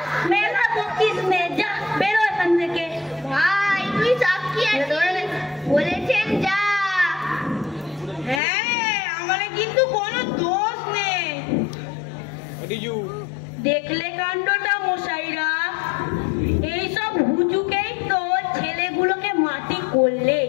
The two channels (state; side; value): drops out; right; at 8.4 s